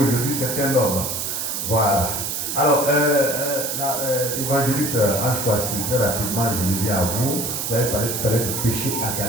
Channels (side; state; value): right; noise; hiss, 3 dB below the sound